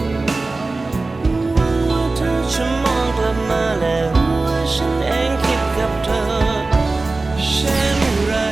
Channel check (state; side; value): quieter; left; 3.4 dB